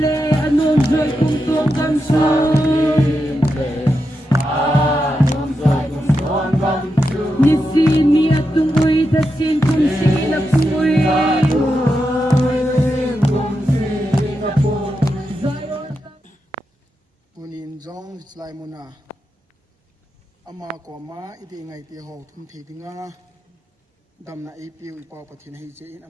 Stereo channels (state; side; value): normal; both; correlation 0.87